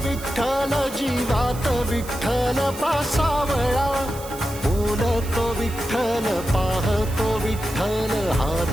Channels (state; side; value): noise; right; hiss, 15 dB below the sound